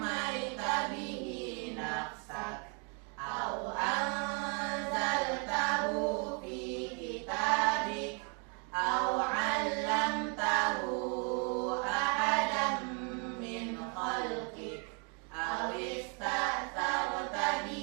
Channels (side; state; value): left; quieter; 37.3 dB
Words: bihi nafsak aw anzaltahu fi kitabik aw 'allamtahu ahadan min khalqik aw ista'tharta